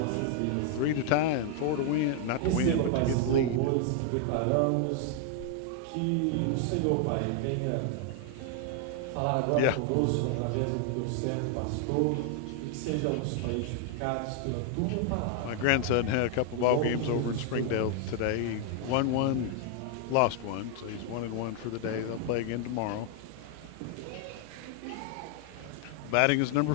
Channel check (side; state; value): both; different; correlation 0.00